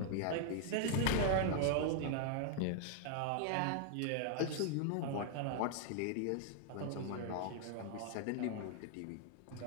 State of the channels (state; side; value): different; both; correlation 0.00